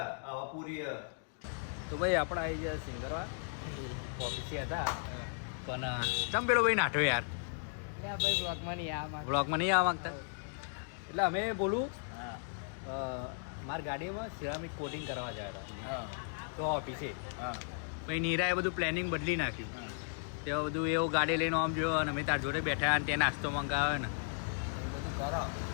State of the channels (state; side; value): silent; right; digital silence